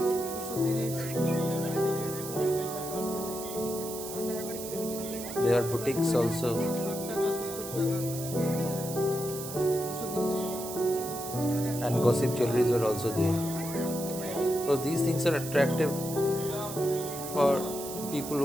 There are boutiques also. and gossip jewelries were also there. Because these things are attractive for people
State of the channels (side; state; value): right; noise; hiss, 9 dB below the sound